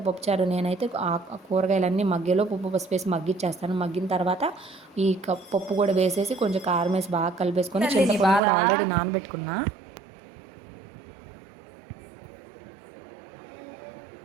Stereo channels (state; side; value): drops out; left; at 8.4 s